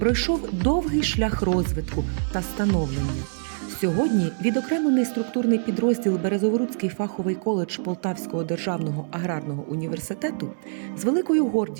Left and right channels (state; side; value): silent; left; digital silence